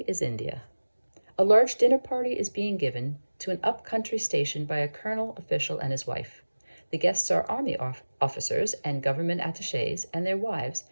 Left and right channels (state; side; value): inverted; both; correlation -1.00